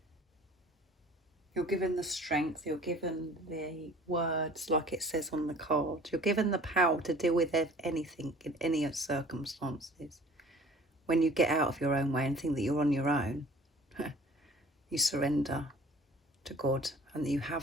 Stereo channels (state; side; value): normal; both; correlation 0.49